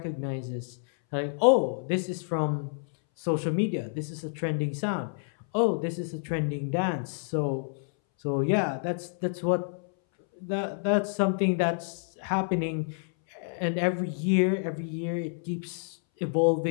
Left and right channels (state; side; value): silent; right; 59 dB below the other